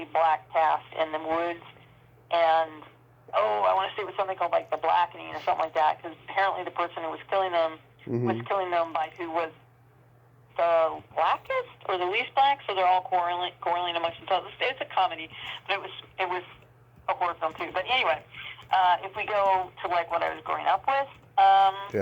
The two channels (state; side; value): identical; both; correlation 1.00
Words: black cast in the woods. And, I want to say it was something called like The Blackening or something like that, because apparently the person who was killing them was killing them by who was the blackest or the least black, so they're all quarreling amongst themselves. It's a comedy, but it was a horror film too. But anyway, if we go to like what I was growing up with,